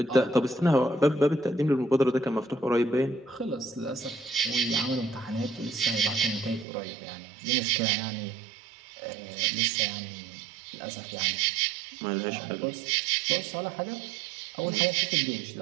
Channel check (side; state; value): left; drops out; at 6.7 s